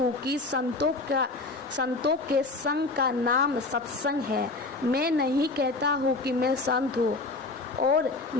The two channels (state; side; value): quieter; right; 3.5 dB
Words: कि संतों के संग का नाम सत्संग है। मैं नहीं कहता हूँ कि मैं संत हूँ और